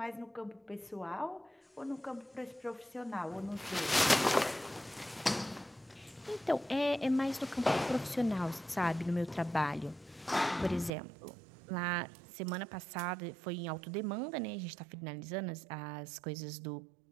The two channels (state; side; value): drops out; left; at 10.9 s